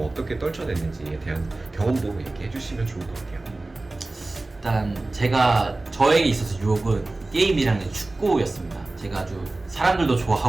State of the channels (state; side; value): quieter; left; 3.0 dB